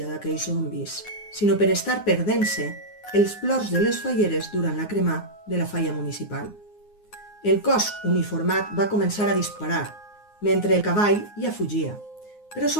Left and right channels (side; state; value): right; late; 9.6 ms